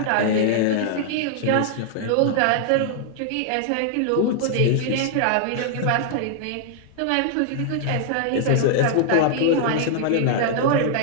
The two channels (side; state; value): both; different; correlation -0.01